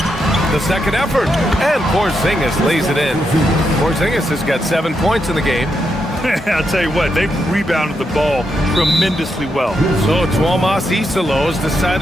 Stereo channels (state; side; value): normal; both; correlation 0.82